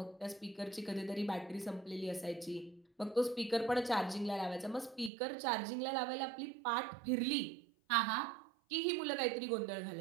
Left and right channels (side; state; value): left; drops out; at 5.1 s